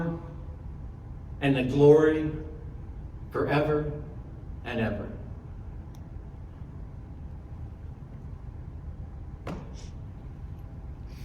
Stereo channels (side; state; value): both; identical; correlation 1.00